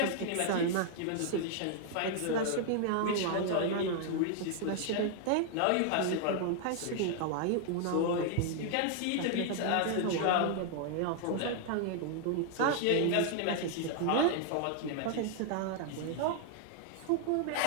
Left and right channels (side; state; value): both; different; correlation 0.00